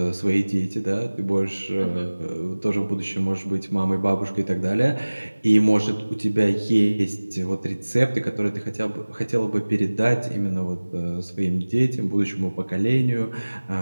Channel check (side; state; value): both; inverted; correlation -1.00